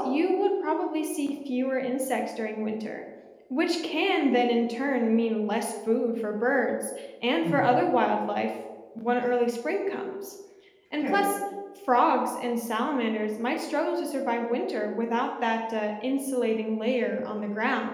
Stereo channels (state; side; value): identical; both; correlation 1.00